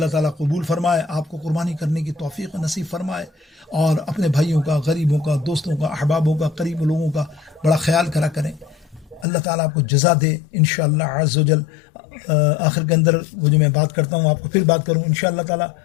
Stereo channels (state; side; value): drops out; right; at 9.2 s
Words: تعالیٰ قبول فرمائے، آپ کو قربانی کرنے کی توفیق نصیب فرمائے، اور اپنے بھائیوں کا، غریبوں کا، دوستوں کا، احبابوں کا، قریب لوگوں کا بڑا خیال کرا کریں. اللہ تعالیٰ آپ کو جزا دے انشاءاللہ عز و جل. آخر کے اندر وہ جو میں بات کرتا ہوں آپ کو پھر بات کروں انشاءاللہ تعالیٰ.